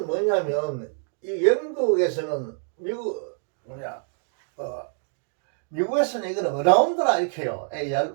뭐냐면 이 영국에서는 미국에서는 이거는 around라 이렇게 해요.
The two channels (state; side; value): silent; left; digital silence